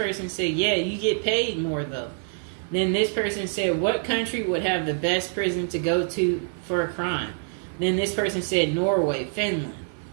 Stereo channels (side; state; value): left; silent; 61 dB below the other